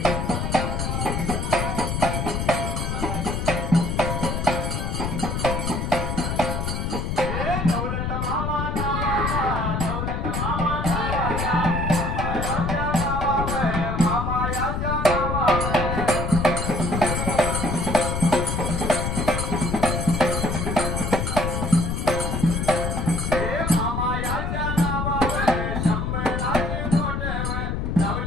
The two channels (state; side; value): noise; left; rumble, 1 dB below the sound